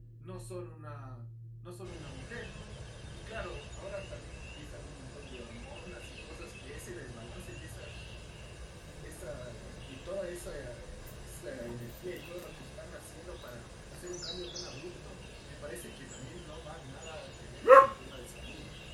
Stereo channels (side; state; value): both; identical; correlation 1.00